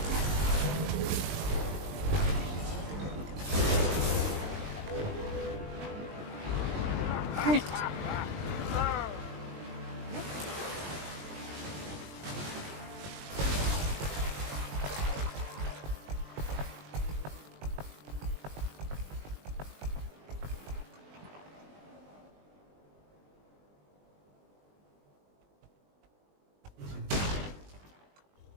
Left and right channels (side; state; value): left; late; 20 ms